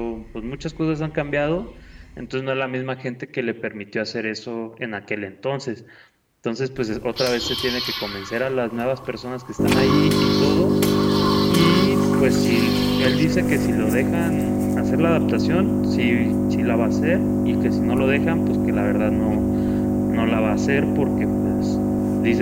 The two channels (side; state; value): both; identical; correlation 1.00